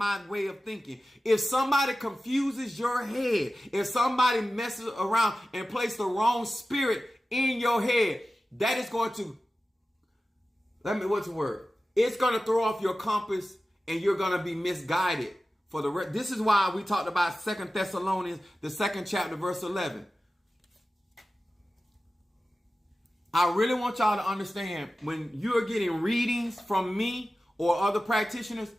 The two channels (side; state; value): both; normal; correlation 0.95